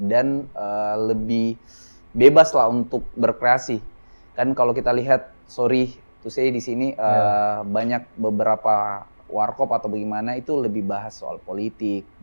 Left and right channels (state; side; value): inverted; both; correlation -1.00